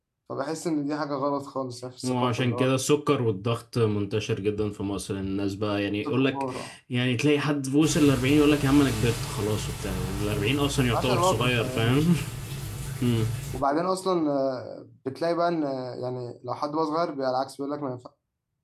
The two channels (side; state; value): both; identical; correlation 1.00